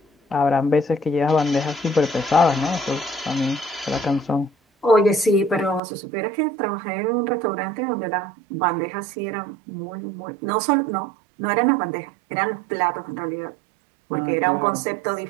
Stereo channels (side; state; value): left; drops out; at 5.8 s